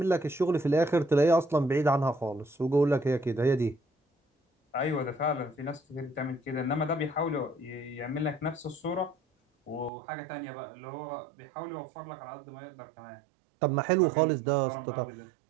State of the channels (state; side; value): drops out; left; at 9.9 s